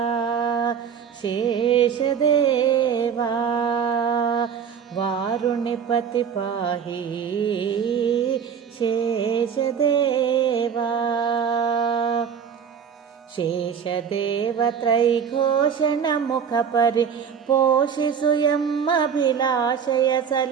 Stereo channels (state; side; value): quieter; left; 7.3 dB